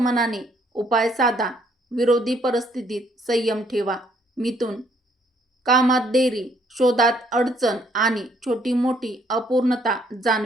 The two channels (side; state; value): both; normal; correlation 0.67